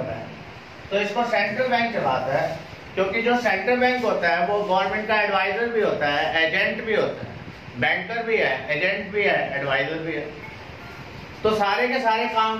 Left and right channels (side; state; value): both; identical; correlation 1.00